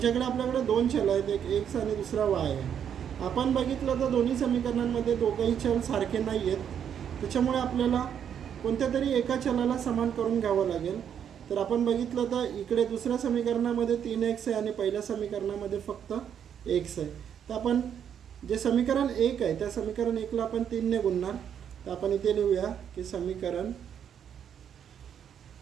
आपल्याकडे दोन चल आहेत, एक x आणि दुसरा y आहे। आपण बघितलं तर दोन्ही समीकरणांमध्ये दोघंही चल सारखे नाही आहेत, त्याच्यामुळे आपल्याला कोणत्या तरी एका चलाला समान करून घ्यावं लागेल। तर आपण बघितलं तर इकडे दुसऱ्या समीकरणामध्ये 3x आहे आणि पहिल्या समीकरणामध्ये फक्त x आहे। तर आपण जे समीकरण 1 आहे त्या समीकरण 1 ला आपण 3 ने गुणणार। तर आपण इथे लिहूया की समीकरण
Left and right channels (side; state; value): left; quieter; 8.6 dB